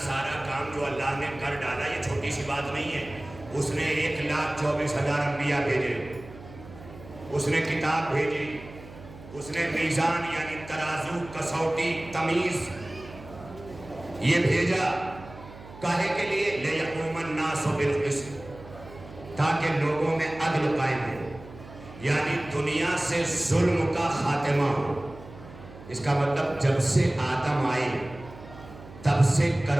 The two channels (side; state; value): right; noise; hum, 17 dB below the sound